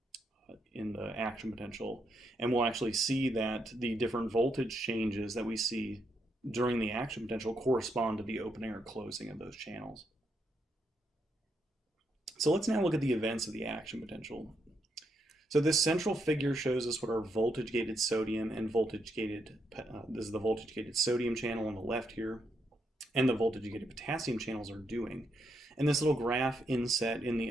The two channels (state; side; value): normal; both; correlation 0.79